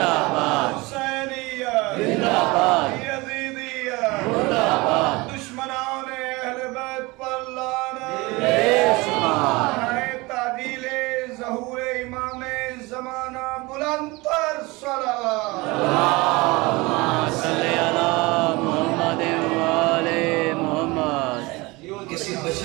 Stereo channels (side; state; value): left; quieter; 23.4 dB